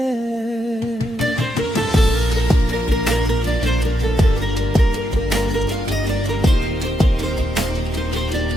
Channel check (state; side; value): normal; both; correlation 0.80